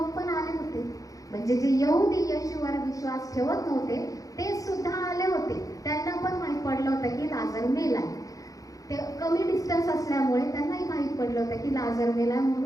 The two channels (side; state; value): right; late; 0.17 ms